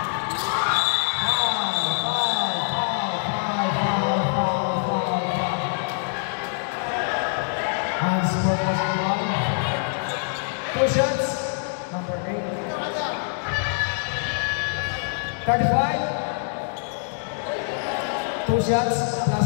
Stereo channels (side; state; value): right; silent; digital silence